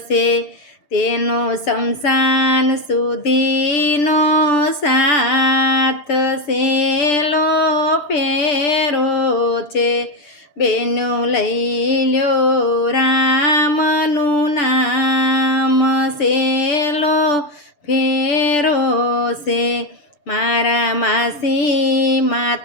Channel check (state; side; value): late; right; 6.8 ms